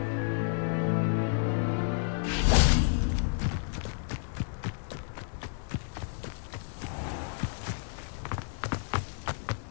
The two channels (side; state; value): right; silent; digital silence